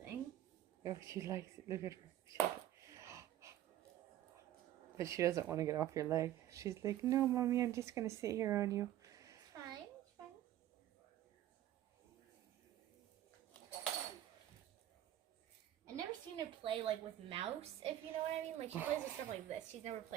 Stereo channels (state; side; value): quieter; left; 12.7 dB